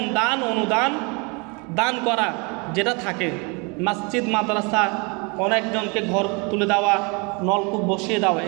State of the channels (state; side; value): quieter; left; 31.1 dB